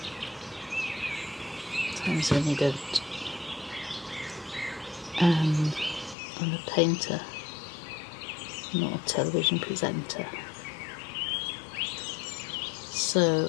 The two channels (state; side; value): drops out; right; at 6.2 s